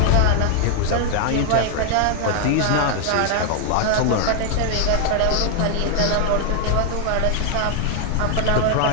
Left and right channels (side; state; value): both; different; correlation 0.00